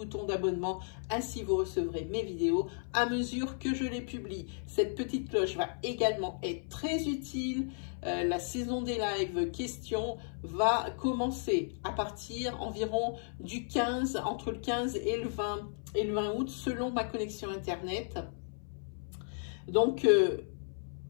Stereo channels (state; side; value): silent; right; 55 dB below the other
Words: d'abonnement. Ainsi, vous recevrez mes vidéos à mesure que je les publie. Cette petite cloche va également être très utile. La saison des lives questions va commencer à partir environ du 15, entre le 15 et le 20 août, selon ma connexion Internet. Donc,